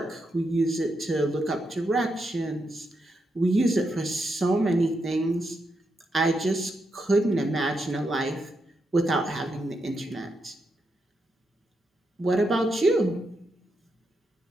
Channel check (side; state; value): both; normal; correlation 0.83